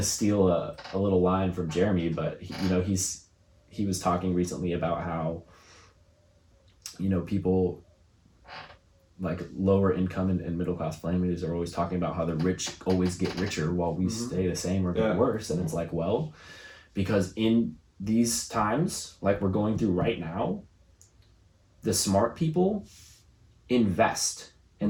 steal a little line from Jeremy, but he was talking recently about how, you know, people like lower income and middle class families are always talking about how the rich always get richer while we stay the same or get worse. And it's like, well, because in these times like we're going through right now, the smart people invest,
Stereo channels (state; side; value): identical; both; correlation 1.00